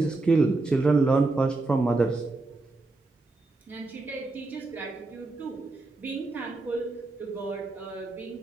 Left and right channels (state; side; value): quieter; left; 3.3 dB